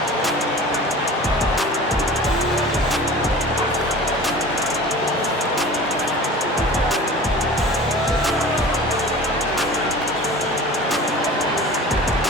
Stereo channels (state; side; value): normal; both; correlation 0.39